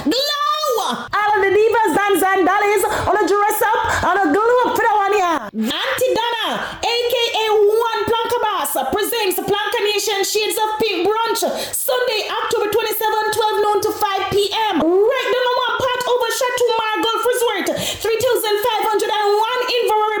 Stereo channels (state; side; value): identical; both; correlation 1.00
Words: All of the divas, dance and dollies, on a dress up, on a glow up for that one, yeah? Auntie Donna, aka One Planka Boss, presents Planka Nation Shades of Pink Brunch, Sunday, October 27, 12 noon to 5 p.m. Right number one part over Chateau Margolf Resort, 3,501 Inverary